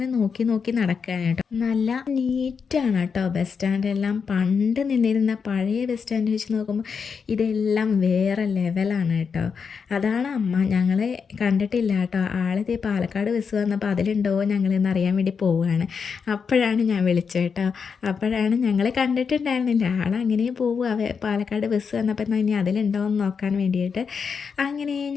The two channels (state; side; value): quieter; right; 6.0 dB